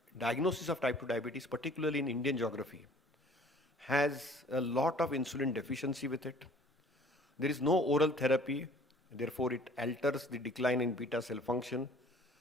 diagnosis of type 2 diabetes, particularly in Indian geography, has a lot of insulin deficiency with it. There is no oral therapy, therefore it alters the decline in beta cell function.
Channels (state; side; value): normal; both; correlation 0.52